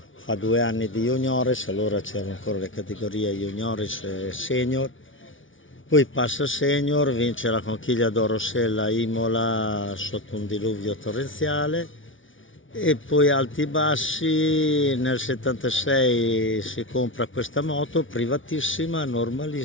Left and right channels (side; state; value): right; late; 0.57 ms